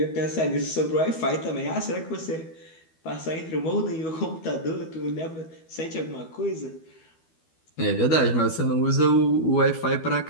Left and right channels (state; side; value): late; right; 12 ms